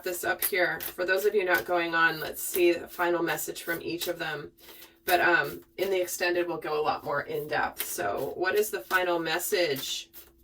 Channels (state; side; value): identical; both; correlation 1.00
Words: this up here. For those of you not going on, let's see the final message from each of them. But in the extended, we'll go a lot more in depth. So what is the final message